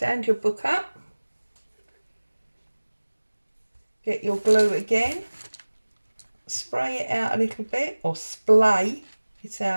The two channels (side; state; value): both; inverted; correlation -1.00